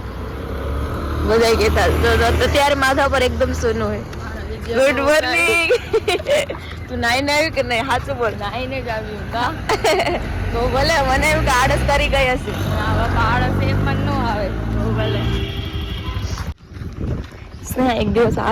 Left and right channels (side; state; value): both; identical; correlation 1.00